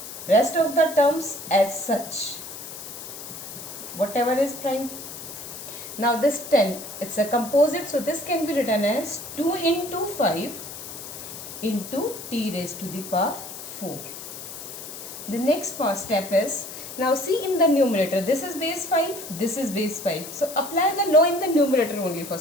rest of the terms as such, whatever is prime. Now this 10, it's a composite, so this can be written as 2 into 5 into t raised to the power 4. The next step is, now see in the numerator, this is base 5, this is base 5. So apply the law in the numerator only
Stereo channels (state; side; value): noise; left; hiss, 11 dB below the sound